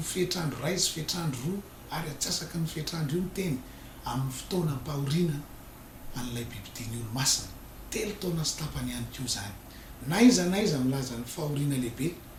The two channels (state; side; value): identical; both; correlation 1.00